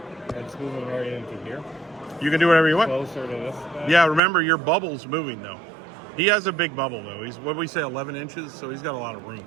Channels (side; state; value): left; drops out; at 4.2 s